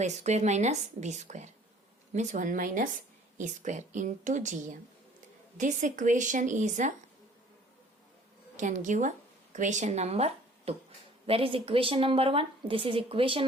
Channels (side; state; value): both; normal; correlation 0.53